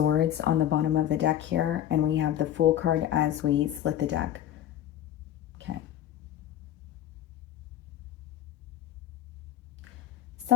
on the bottom of the deck here, and we have the Fool card as we split the deck. Okay.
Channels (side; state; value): right; quieter; 11.4 dB